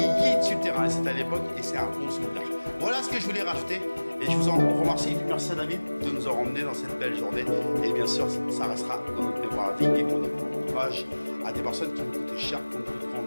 sur le terrain, c'était à l'époque et c'est un bon souvenir. Voilà ce que je voulais rajouter et je vous en remercie. Merci à David de nous avoir emmenés dans cette belle journée et bien sûr ça restera dans notre mémoire à vie et qu'on hommage à des personnes qui nous coûtaient cher comme notre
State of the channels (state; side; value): inverted; both; correlation -1.00